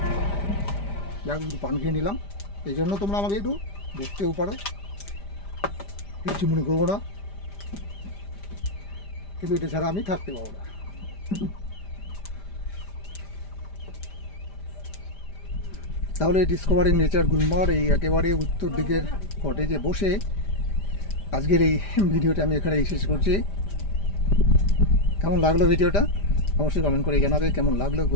যাক একটু পান খেয়ে নিলাম, এই জন্য তোমরা আমাকে একটু দেখতেও পারো। কিছু মনে করবো না, কিন্তু এটা ছাড়া আমি থাকতে পারবো না। তাহলে ডিসকভারিং নেচার গুলমার এই একেবারে উত্তর দিকের কটেজে বসে আজকের এই ভিডিওটা আমি এখানেই শেষ করছি। কেমন লাগলো ভিডিওটা অবশ্যই কমেন্ট করে জানাবে। কেমন লাগলো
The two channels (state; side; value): late; right; 5.0 ms